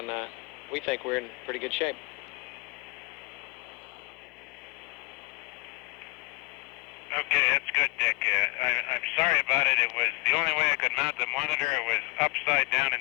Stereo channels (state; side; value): quieter; right; 26.3 dB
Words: we think we're in pretty good shape. Okay, that's good, Dick. I'm sorry about it. It was the only way I could mount the monitor. It was upside down